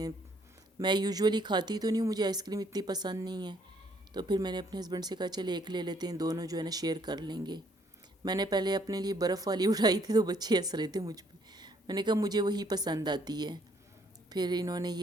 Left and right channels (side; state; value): both; normal; correlation 0.66